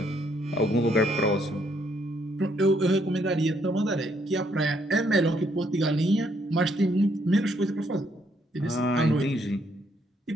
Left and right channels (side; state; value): both; normal; correlation 0.71